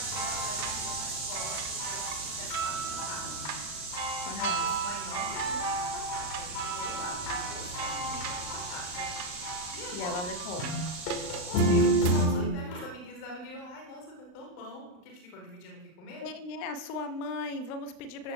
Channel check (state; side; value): late; right; 38 ms